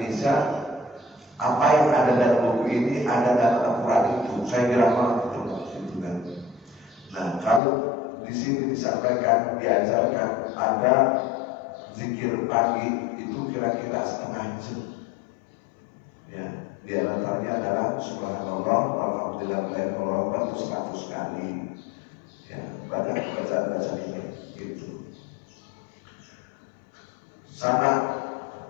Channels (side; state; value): right; drops out; at 7.6 s